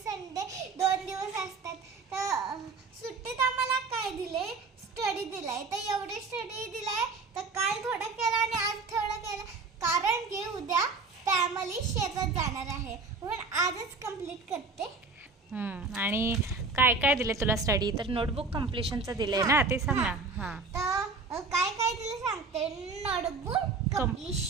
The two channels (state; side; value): quieter; left; 4.1 dB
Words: संडे 2 दिवस असतात. तर सुट्टीत आम्हाला काय दिले, स्टडी दिलाय. तर एवढे स्टडी दिलाय, तर काल थोडं केलं आणि आज थोडं केलं, कारण की उद्या फॅमिली शेतात जाणार आहे म्हणून आजच कंप्लीट करते. आणि काय काय दिले तुला स्टडी? तर नोटबुक कम्प्लिशनचं दिलंय ना, ते सांग ना. हां तर काय काय दिलं सांगते. Notebook